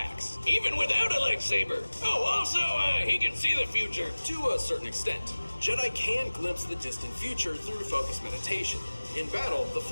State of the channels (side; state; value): both; inverted; correlation -1.00